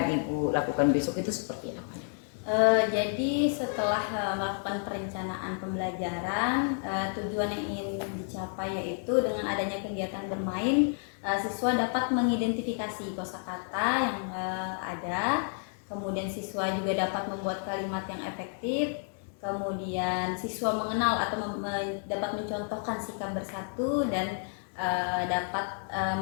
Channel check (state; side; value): silent; right; 57 dB below the other